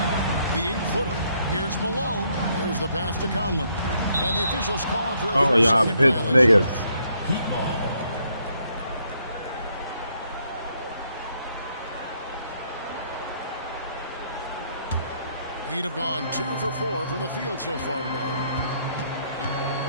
The 8-footer. Here's Malone. There's the pass to Conlon. And the officials call for a 3-second violation. Niggas. Heat ball. He'd have gone 2 for 4 from the field so far today.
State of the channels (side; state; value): both; inverted; correlation -0.71